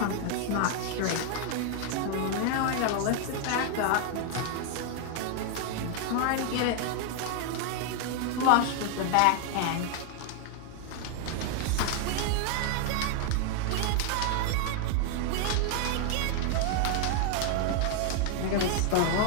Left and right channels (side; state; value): both; different; correlation 0.00